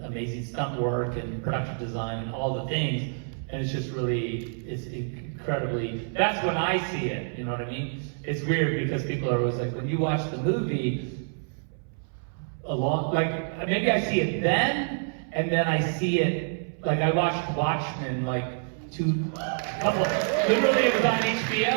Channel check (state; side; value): silent; left; 60 dB below the other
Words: amazing stunt work and production design and all the things, and it's just really, it's incredibly, that's when I see it, you know what I mean? It's weird because people are always like, when you watch the movie, like, maybe I see it then, and then I see it, like I watched Watchmen, like, literally it was on